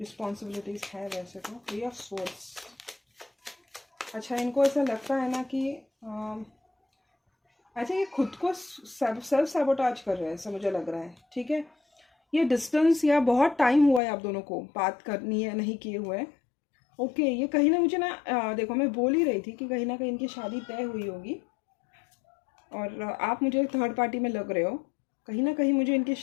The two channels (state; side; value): drops out; right; at 14.0 s